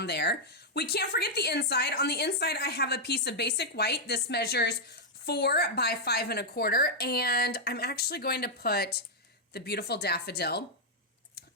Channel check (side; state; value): both; normal; correlation -0.04